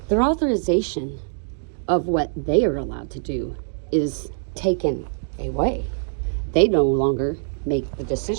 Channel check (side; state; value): left; silent; digital silence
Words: Their authorization of what they are allowed to do is taken away. They no longer make the